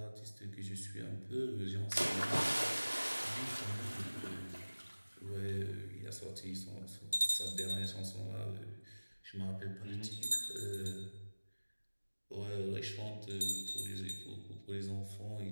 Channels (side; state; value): both; inverted; correlation -1.00